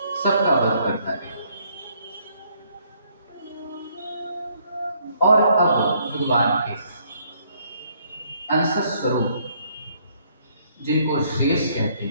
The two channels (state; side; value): inverted; both; correlation -0.67